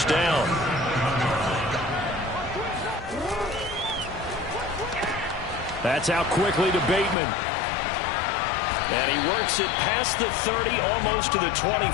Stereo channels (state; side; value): drops out; right; at 7.2 s